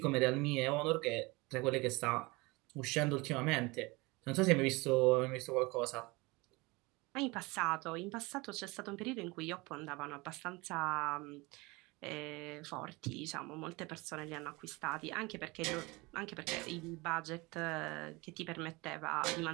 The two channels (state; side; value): quieter; left; 24.3 dB